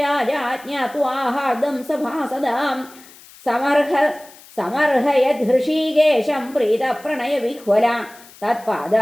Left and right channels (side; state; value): left; noise; hiss, 22 dB below the sound